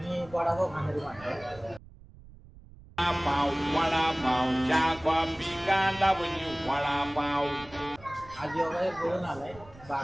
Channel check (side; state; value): right; noise; rumble, 21 dB below the sound